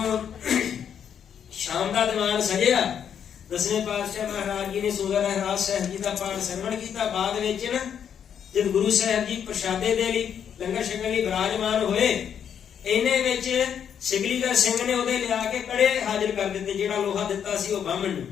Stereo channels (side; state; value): right; quieter; 8.3 dB